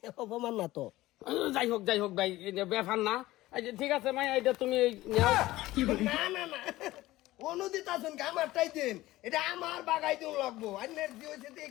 অপমান না তো যাই হোক ভাই এটা ব্যাপার না এই যে ঠিক আছে মাই এটা তুমি নাও না অনুদিত আছেন আমার টাই দিন এটা আমার বাগাই দিন লাগবো আন্নের জি হইছে দিয়ে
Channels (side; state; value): right; quieter; 17.1 dB